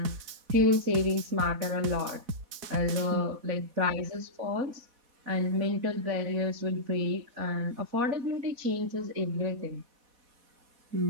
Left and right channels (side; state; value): left; late; 4.1 ms